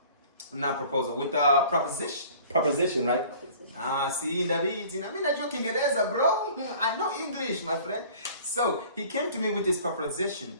With a proposition. Proposition, right? See, David, I mean, I'm joking, bro. I know English, my friend. So he came to me with this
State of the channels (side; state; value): both; inverted; correlation -0.48